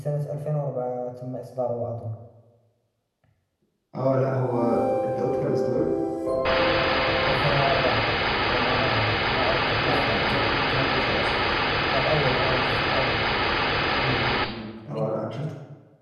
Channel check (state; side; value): identical; both; correlation 1.00